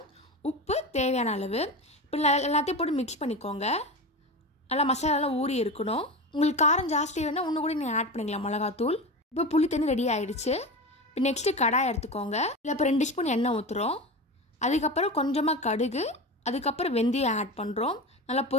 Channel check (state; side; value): normal; both; correlation 0.25